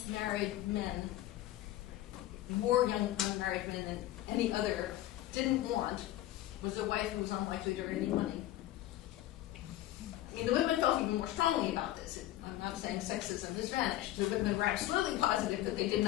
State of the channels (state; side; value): quieter; right; 14.7 dB